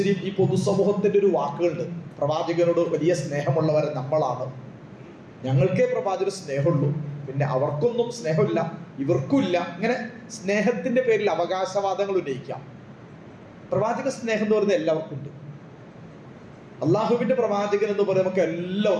ഈ പൊതുസമൂഹത്തിൻ്റെ ഒരു വാക്കുകളുണ്ട്, പ്രവാചകനോട് വലിയ സ്നേഹമുള്ളവർ നമ്മളാണ്, ഞങ്ങൾക്കേ പ്രവാചകന് സ്നേഹമുള്ളൂ, പിന്നെ അവർക്കൊന്നും സ്നേഹമില്ല, ഇവർക്കും ഇല്ല. ഇങ്ങനെ സ്നേഹത്തിന്റെ പേരിൽ അവകാശവാദങ്ങൾ ഉന്നയിക്കാം. പ്രവാചക സ്നേഹം എന്ന് പറയുന്നത് എല്ലാവർക്കും ഉണ്ട്. അള്ളാഹുവിന്റെ പ്രവാചകൻ എന്ന് പറയുന്നത് നമുക്ക്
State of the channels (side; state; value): both; identical; correlation 1.00